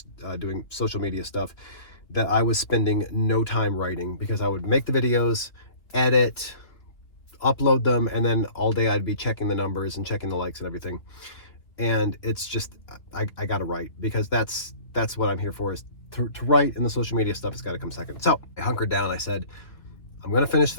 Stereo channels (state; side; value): late; right; 2.7 ms